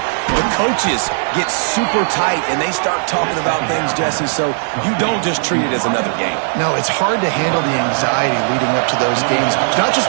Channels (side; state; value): left; silent; digital silence